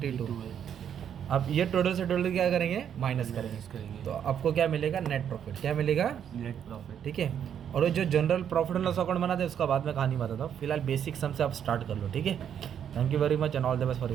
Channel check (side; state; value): left; quieter; 8.8 dB